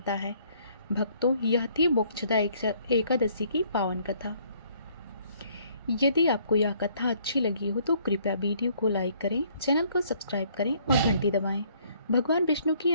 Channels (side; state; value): both; inverted; correlation -0.63